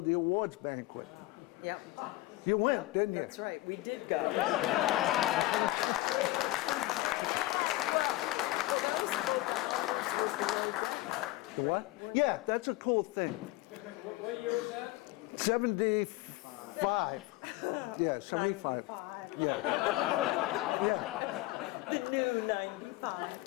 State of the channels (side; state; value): right; quieter; 18.4 dB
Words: the awards banquet. Yep. You went, didn't you? That's right. We did go. The what? Yeah, that's a cool thing. What year was that? 75. Yeah, 75. Yeah. Yeah. The new